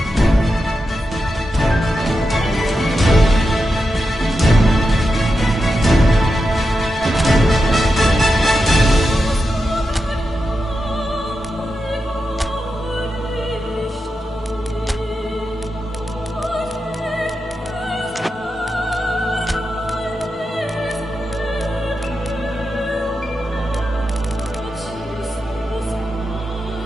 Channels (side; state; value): both; normal; correlation 0.88